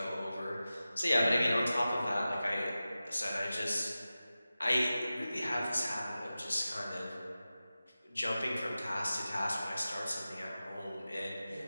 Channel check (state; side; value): inverted; both; correlation -0.95